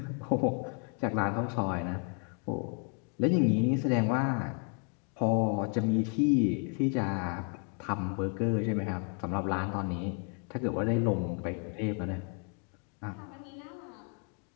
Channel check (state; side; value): quieter; right; 37.0 dB